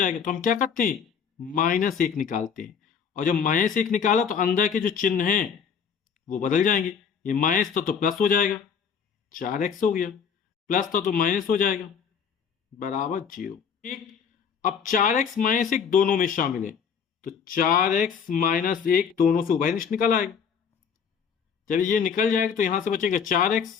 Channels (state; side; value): quieter; right; 6.9 dB